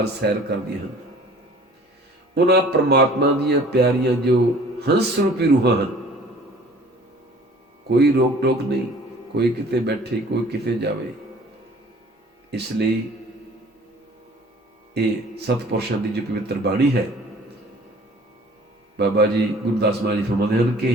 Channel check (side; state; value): both; normal; correlation 0.50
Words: ਸੈਰ ਕਰਦੀਆਂ ਹਨ। ਉਹਨਾਂ ਪਰਮਾਤਮਾ ਦੀਆਂ ਪਿਆਰੀਆਂ ਜੋ ਹੰਸ ਰੂਪੀ ਰੂਹਾਂ ਹਨ, ਕੋਈ ਰੋਕ ਟੋਕ ਨਹੀਂ, ਕੋਈ ਕਿਤੇ ਬੈਠੇ, ਕੋਈ ਕਿਤੇ ਜਾਵੇ। ਇਸ ਲਈ ਇਹ ਸਤਪੁਰਸ਼ਾਂ ਦੀ ਜੋ ਪਵਿੱਤਰ ਬਾਣੀ ਹੈ, ਬਾਬਾ ਜੀ ਗੁਰਦਾਸ ਮਹਾਰਾਜ ਜੀ ਫਰਮਾਉਂਦੇ ਹਨ